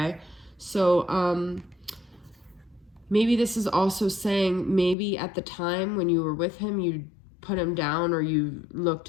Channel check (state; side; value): drops out; right; at 5.0 s